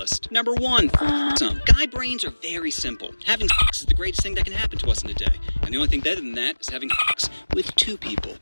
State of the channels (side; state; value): both; inverted; correlation -1.00